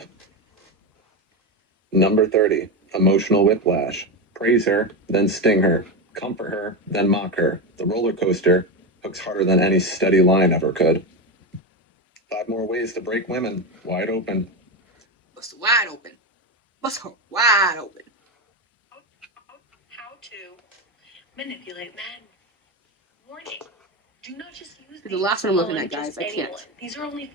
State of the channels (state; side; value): normal; both; correlation 0.15